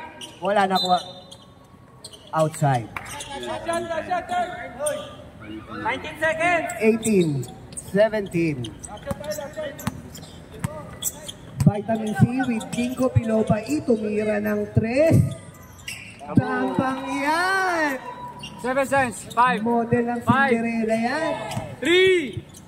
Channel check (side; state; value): both; identical; correlation 1.00